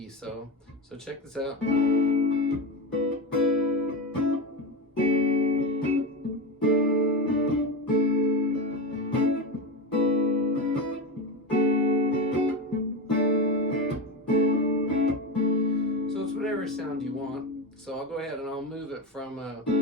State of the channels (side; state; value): both; normal; correlation 0.18